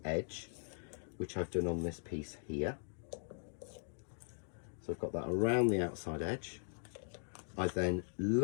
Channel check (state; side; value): silent; right; digital silence